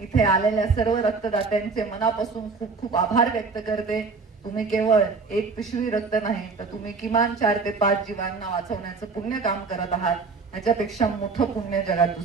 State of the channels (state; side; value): quieter; left; 4.5 dB